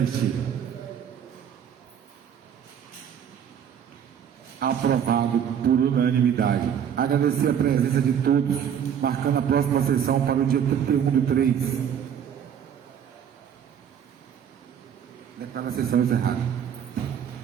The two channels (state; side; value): quieter; left; 8.6 dB